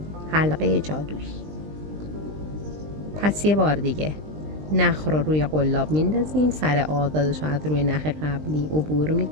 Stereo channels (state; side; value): late; left; 20 ms